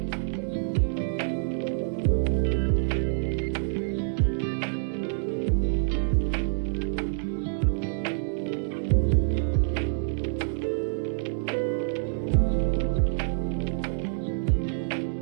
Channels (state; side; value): silent; left; digital silence